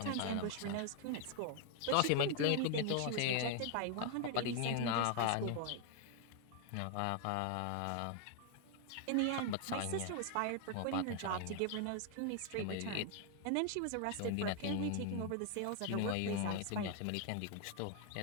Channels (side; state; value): both; different; correlation 0.00